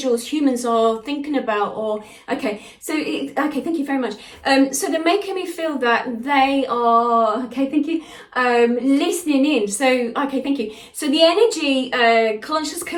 humans are thinking about, or okay, so okay, thank you very much. So they're making me feel that they are, okay, thank you, listening in. So okay, thank you. So the energy conscious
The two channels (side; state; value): both; identical; correlation 1.00